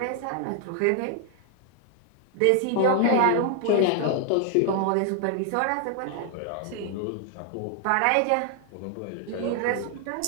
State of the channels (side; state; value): both; different; correlation 0.00